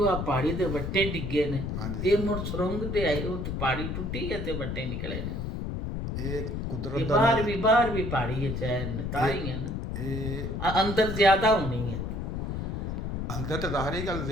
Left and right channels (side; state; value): left; noise; rumble, 3 dB below the sound